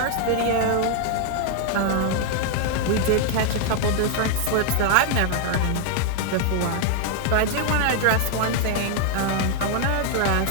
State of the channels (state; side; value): different; both; correlation 0.00